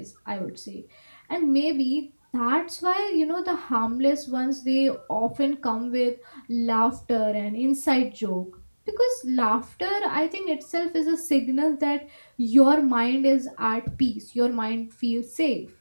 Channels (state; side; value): inverted; both; correlation -1.00